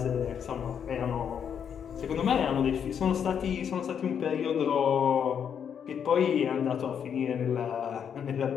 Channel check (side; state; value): right; quieter; 7.9 dB